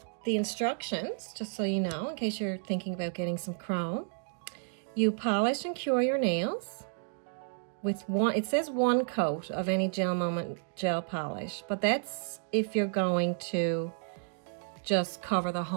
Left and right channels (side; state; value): left; silent; digital silence